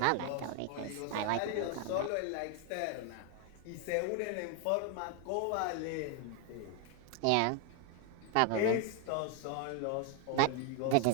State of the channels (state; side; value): different; both; correlation 0.01